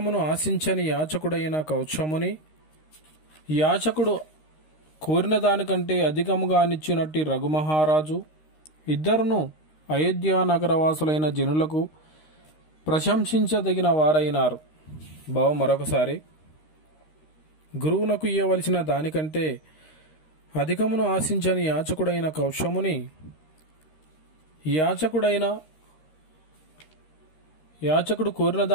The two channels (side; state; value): right; late; 13 ms